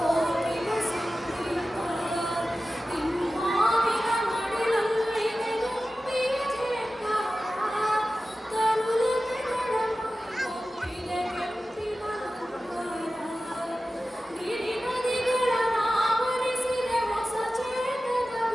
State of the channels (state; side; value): normal; both; correlation 0.95